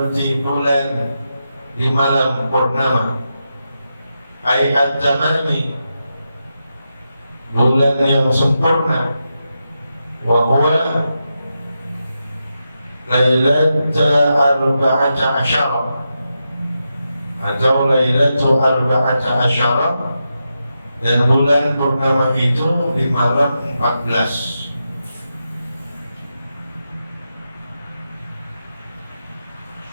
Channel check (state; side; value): inverted; both; correlation -0.87